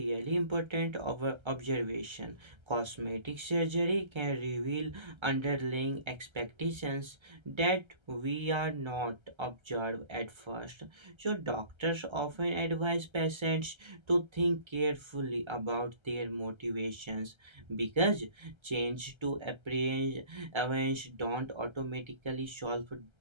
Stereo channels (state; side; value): late; left; 1.3 ms